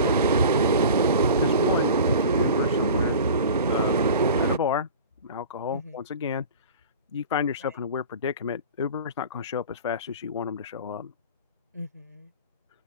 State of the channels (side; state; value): both; inverted; correlation -0.38